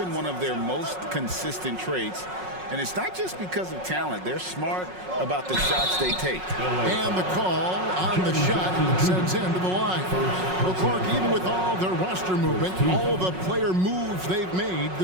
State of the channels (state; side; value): late; left; 5.4 ms